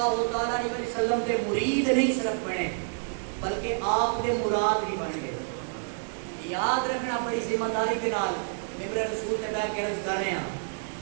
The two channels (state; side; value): silent; left; 57 dB below the other